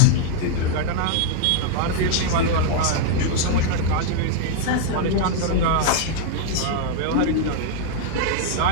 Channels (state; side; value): different; both; correlation -0.01